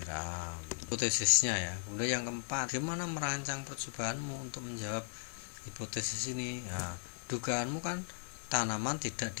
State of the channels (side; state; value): right; silent; digital silence